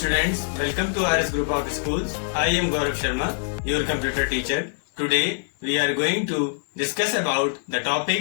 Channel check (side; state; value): right; silent; 58 dB below the other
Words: welcome to RS Group of Schools. I am Gaurav Sharma, your computer teacher. Today we are going to discuss about the